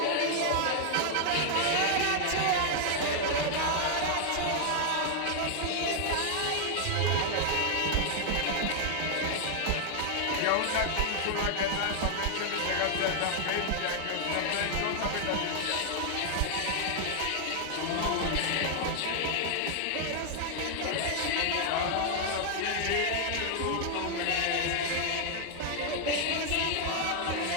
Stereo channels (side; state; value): both; different; correlation 0.00